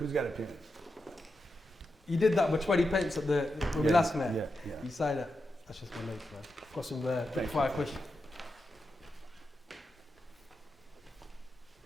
got a pen? You did that with 20 pence at when we last met. Yeah. You signed it. That's just my notes, man. Got some quick Thank fire questions.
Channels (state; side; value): normal; both; correlation 0.88